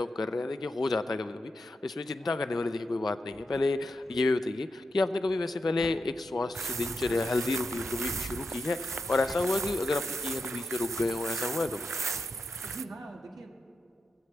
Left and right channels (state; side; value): normal; both; correlation 0.86